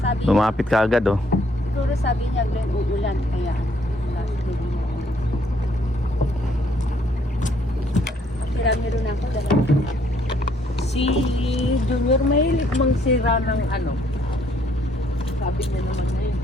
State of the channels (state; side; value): normal; both; correlation 0.66